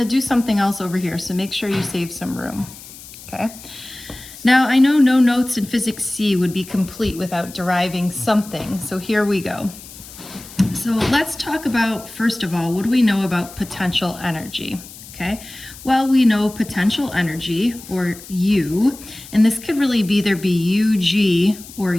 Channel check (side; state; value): left; noise; hiss, 17 dB below the sound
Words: do something else over here, so make sure you save some room, okay? Now, I know no notes in Physics C would be complete without deriving something, so here we go. So let's talk about, first of all, what do we know about potential energy? Okay, well, we know potential energy, or U, and this could really either be UG or